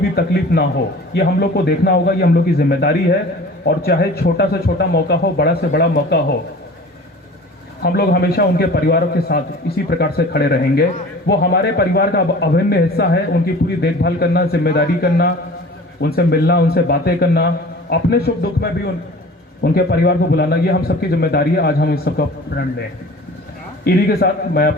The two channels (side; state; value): both; normal; correlation 0.42